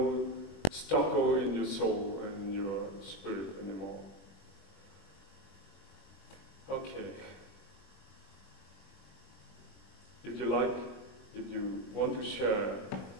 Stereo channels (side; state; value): right; late; 21 ms